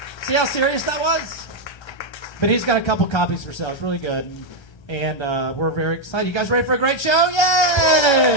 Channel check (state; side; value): late; right; 1.3 ms